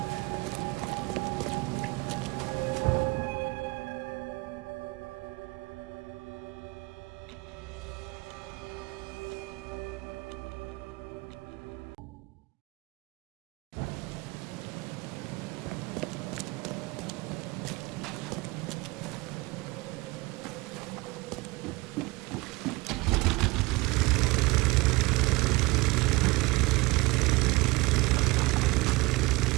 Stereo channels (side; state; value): left; quieter; 23.3 dB